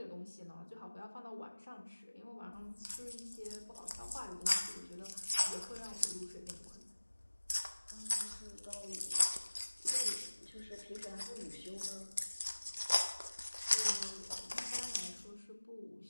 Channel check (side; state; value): both; inverted; correlation -1.00